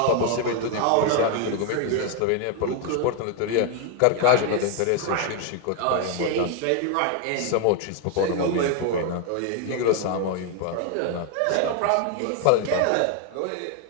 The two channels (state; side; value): different; both; correlation 0.01